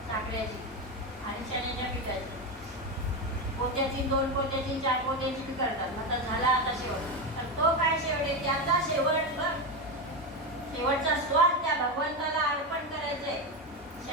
साखरेची आणि चण्याच्या पिठाची. पोत्याची, 2 पोत्याची, 4 पोत्याची बी करतात. आता झाला आता शेवट. तर तो काय शेवट आहे? त्याचा शेवट बघ. शेवटचा स्वाद त्या भगवंताला अर्पण करायचंय.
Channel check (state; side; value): normal; both; correlation 0.13